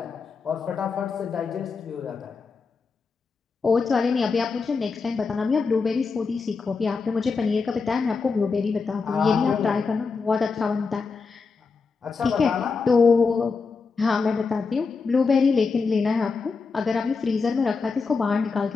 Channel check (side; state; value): right; quieter; 4.8 dB